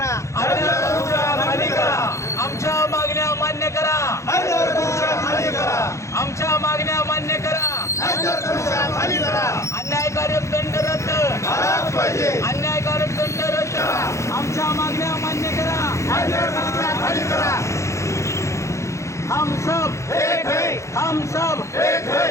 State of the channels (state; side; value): late; right; 0.14 ms